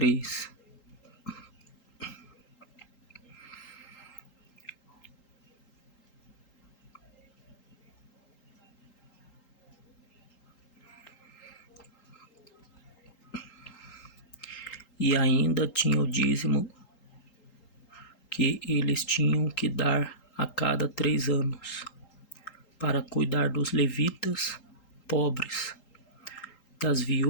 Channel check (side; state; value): right; late; 3.8 ms